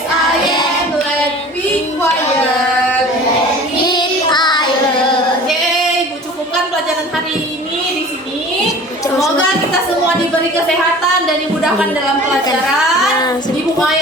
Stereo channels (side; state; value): both; normal; correlation 0.43